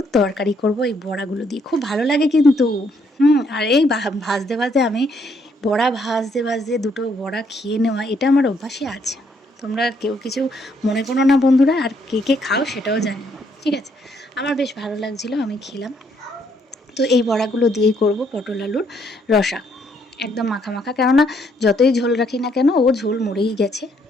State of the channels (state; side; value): normal; both; correlation 0.70